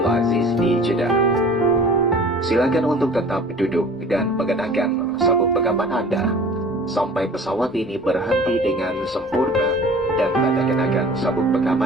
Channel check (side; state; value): both; normal; correlation 0.45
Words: di Jeddah. Silakan untuk tetap duduk dan mengenakan sabuk pengaman Anda sampai pesawat ini berhenti dengan sempurna dan tanda kenakan sabuk